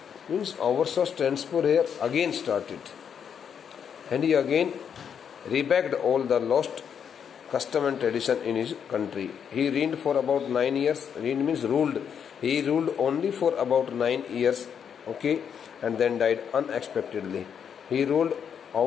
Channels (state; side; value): quieter; right; 7.7 dB